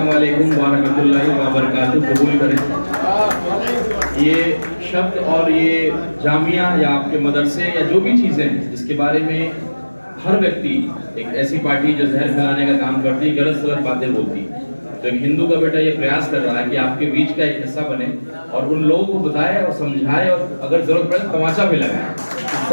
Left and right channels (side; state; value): both; inverted; correlation -1.00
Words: वालेकुम व रहमतुल्लाहि व बरकातहू कबूल करें। ये शब्द और ये जामिया या आपके मदरसे या जो भी चीज़ें हैं जिसके बारे में हर व्यक्ति, एक ऐसी पार्टी जो जहर फैलाने का काम करती है, गलत सलत बातें बोलती है, तो एक हिंदू का बेटा ये प्रयास कर रहा है कि आपके बीच का एक हिस्सा बने और उन लोगों को बताए और समझाए और अगर जरूरत पड़े तमाचा भी लगाए